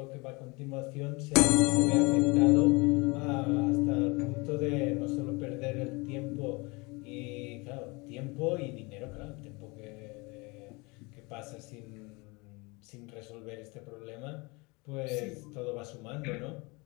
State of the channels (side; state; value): right; quieter; 26.8 dB